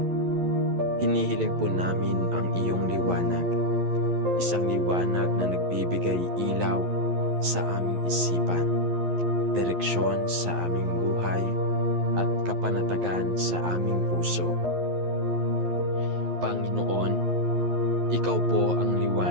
hinihiling po namin ang iyong liwanag. Isang liwanag na nagbibigay ilaw sa aming isipan, direksyon sa aming buhay, at kapanatagan sa aming puso. Panginoon, ikaw po ang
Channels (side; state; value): left; late; 11 ms